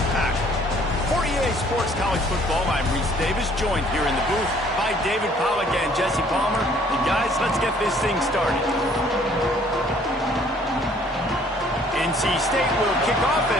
For EA Sports College Football, I'm Reese Davis, joined here in the booth by David Pollack and Jesse Palmer. And guys, let's get this thing started. NC State will kick off,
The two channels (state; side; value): normal; both; correlation 0.59